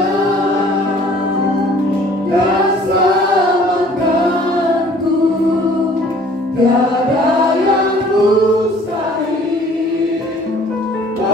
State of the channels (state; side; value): normal; both; correlation 0.54